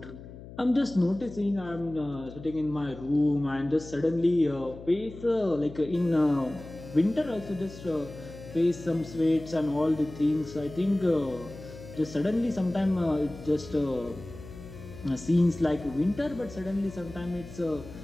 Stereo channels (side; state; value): left; noise; hum, 15 dB below the sound